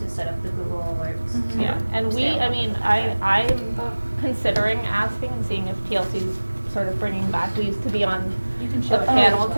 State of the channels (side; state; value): both; inverted; correlation -1.00